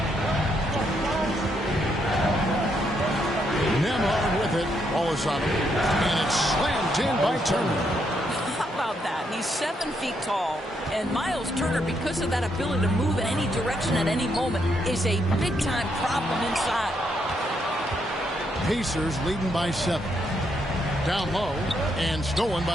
Nembhard with it. Wallace on him. And it's slammed in by Turner. How about that? He's 7 feet tall. And Miles Turner, because of that ability to move in any direction at any moment, is a big-time problem inside. Pacers leading by 7. Down low and stolen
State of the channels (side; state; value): both; normal; correlation 0.76